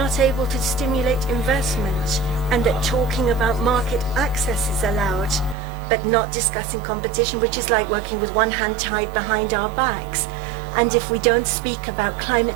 able to stimulate investment, and that talking about market access is allowed, but not discussing competition, which is like working with one hand tied behind our backs. And if we don't speak about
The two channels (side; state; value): left; drops out; at 5.6 s